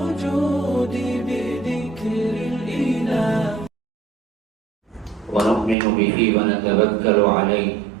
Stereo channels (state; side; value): drops out; left; at 5.8 s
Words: بذكر الإله. ونؤمن به ونتوكل عليه